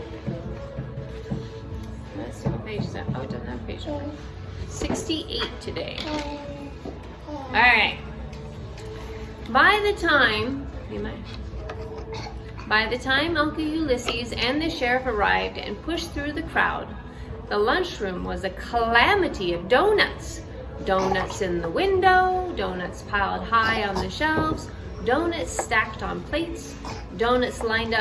let's see what page is that? Oh, it doesn't have a page number. 68 today. All right. By the time Uncle Ulysses and the sheriff arrived and pushed through the crowd, the lunchroom was a calamity of donuts. Donuts in the window, donuts piled high on the shelves, donuts stacked on plates, donuts lined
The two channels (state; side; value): identical; both; correlation 1.00